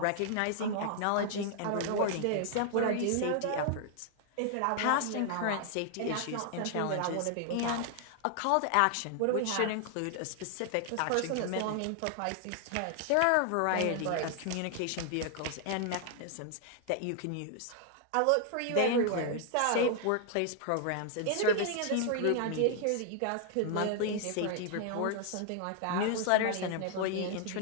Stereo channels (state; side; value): different; both; correlation 0.00